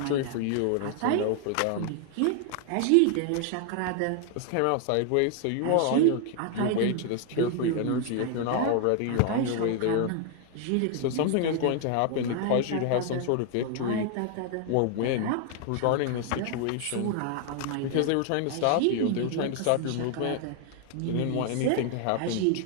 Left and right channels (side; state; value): both; different; correlation 0.00